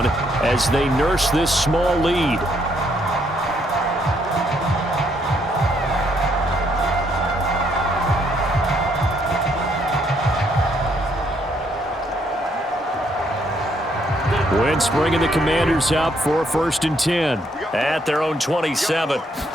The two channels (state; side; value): normal; both; correlation 0.71